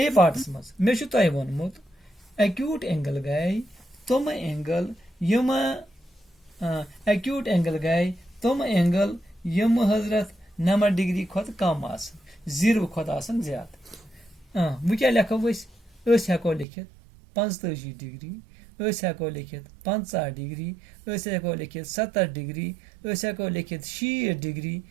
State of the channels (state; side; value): drops out; left; at 16.7 s